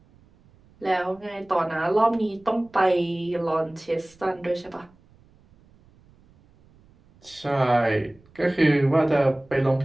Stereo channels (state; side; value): noise; right; rumble, 30 dB below the sound